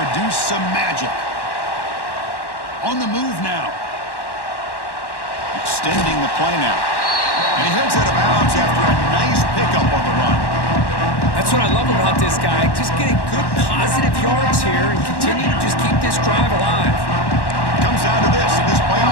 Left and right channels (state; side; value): late; right; 1.1 ms